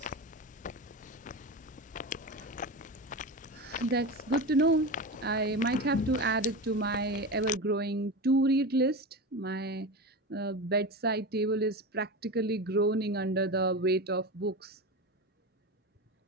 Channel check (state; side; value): normal; both; correlation 0.23